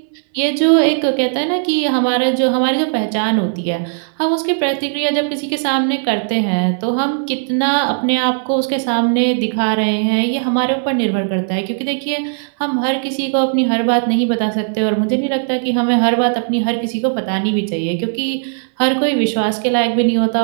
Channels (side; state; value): left; silent; 66 dB below the other